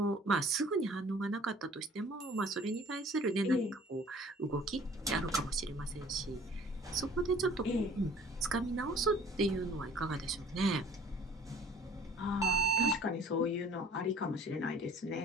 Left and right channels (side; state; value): both; normal; correlation 0.50